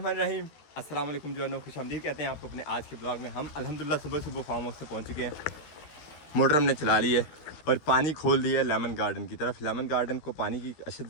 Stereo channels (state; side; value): late; right; 13 ms